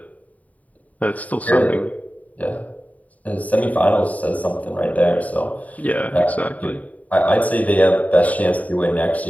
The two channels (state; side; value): late; right; 0.072 ms